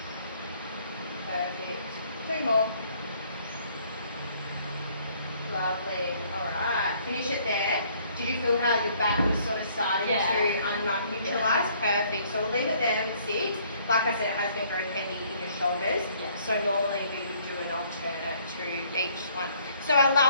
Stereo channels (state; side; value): inverted; both; correlation -0.62